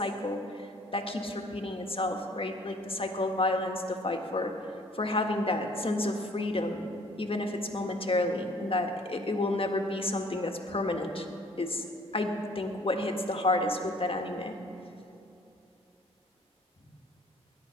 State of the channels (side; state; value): both; normal; correlation 0.55